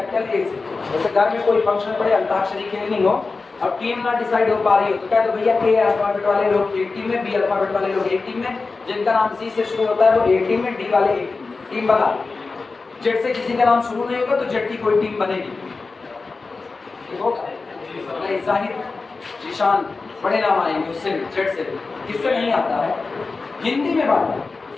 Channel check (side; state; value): right; quieter; 4.0 dB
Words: ए से। जैसे घर में कोई फंक्शन पड़े, अंताक्षरी खेलनी हो और टीम ना डिसाइड हो पा रही हो तो क्या, तो भैया ए अल्फाबेट वाले लोग एक टीम में, बी अल्फाबेट वाले लोग एक टीम में, जिनका नाम सी से शुरू होता है वो एक टीम में, डी वाले एक टीम बना, जेड से किसी का नाम शुरू नहीं होगा तो जेड की कोई टीम बनेगी, जाहिर जिशान बड़े नाम आएंगे उससे भी, जेड से भी, किससे नहीं आता है, हिंदी में बात है,